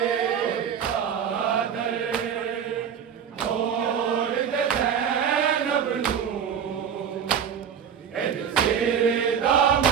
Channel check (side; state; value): left; quieter; 7.9 dB